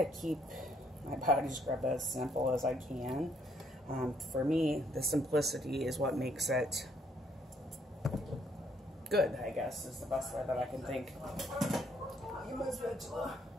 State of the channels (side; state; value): both; normal; correlation 0.69